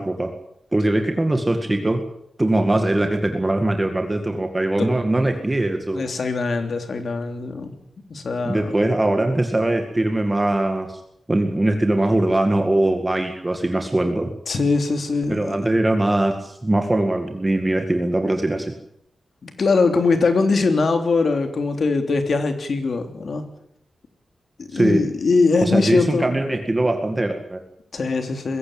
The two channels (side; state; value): both; normal; correlation 0.93